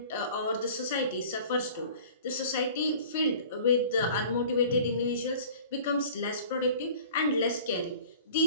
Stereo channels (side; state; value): both; inverted; correlation -0.45